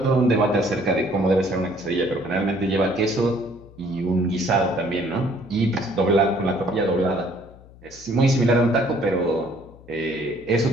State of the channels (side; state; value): left; noise; hum, 22 dB below the sound